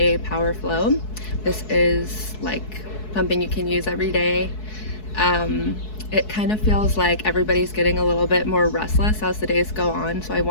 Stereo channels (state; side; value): late; right; 4.7 ms